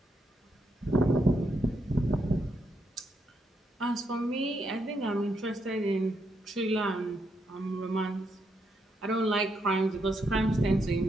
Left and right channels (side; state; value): both; normal; correlation 0.79